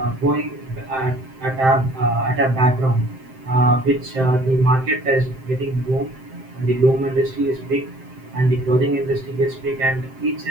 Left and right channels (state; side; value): late; left; 7.7 ms